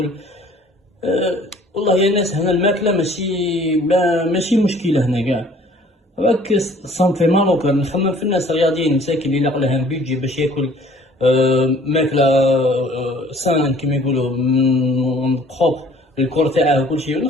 والله يا ناس هنا الماكله ماشي مشكله هنا كاع. راك صنفي مالوكا نخمم في الناس الرياضيين مساكين اللي لاقوا لهم بيجي باش ياكل ماكله سان كيما يقولوا بروبر الكور تاعه وكل شيء،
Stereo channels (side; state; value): both; normal; correlation 0.54